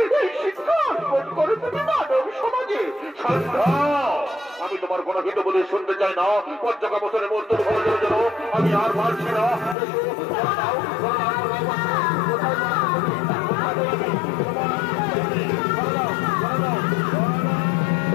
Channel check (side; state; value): right; drops out; at 9.8 s